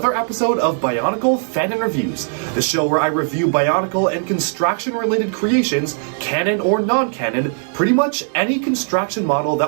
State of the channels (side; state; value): left; silent; digital silence